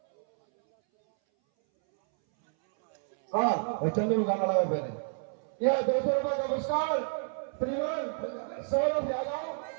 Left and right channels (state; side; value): silent; left; 58 dB below the other